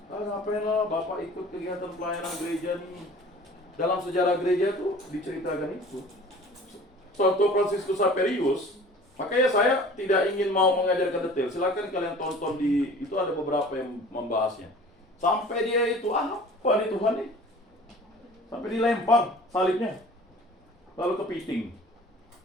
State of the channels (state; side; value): normal; both; correlation 0.45